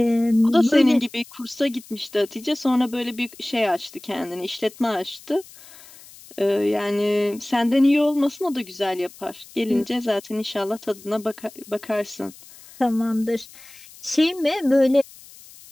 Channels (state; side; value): noise; left; hiss, 21 dB below the sound